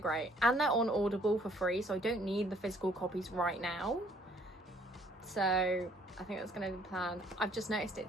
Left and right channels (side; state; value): both; normal; correlation 0.61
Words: and they're on Audible for free, so I don't need the physical copies right now. So I think that's going to be the plan. I've just noticed